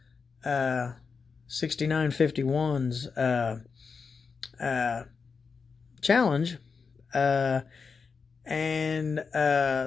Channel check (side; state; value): right; quieter; 5.3 dB